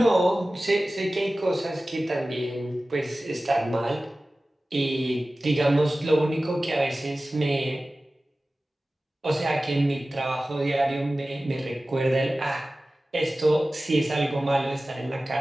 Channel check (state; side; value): normal; both; correlation 0.96